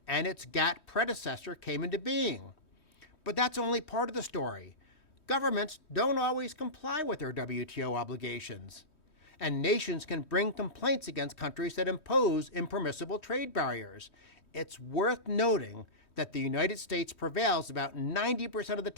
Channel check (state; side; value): late; right; 3.2 ms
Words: and its GATT predecessor came into being. But that's only part of the story. Governments don't always comply with their WTO obligations, and nations can bring complaints against countries that impose impermissible trade barriers. It's worth noting that the United States prevails about 90% of the